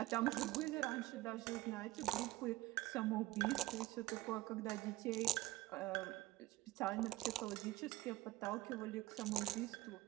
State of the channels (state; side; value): quieter; left; 18.5 dB